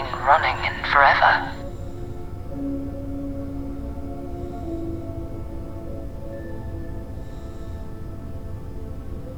running in forever.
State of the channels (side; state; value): both; identical; correlation 1.00